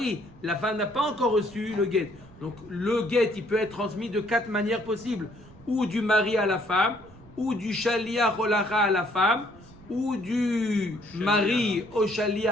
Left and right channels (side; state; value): right; noise; rumble, 22 dB below the sound